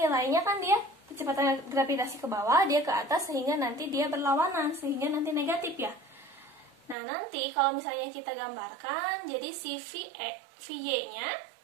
kan dia kecepatan gravitasi ke bawah, dia ke atas, sehingga nanti dia berlawanan, sehingga nanti negatif ya. Nah, nanti kalau misalnya kita gambarkan, jadi si VY-nya,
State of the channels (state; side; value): drops out; left; at 7.0 s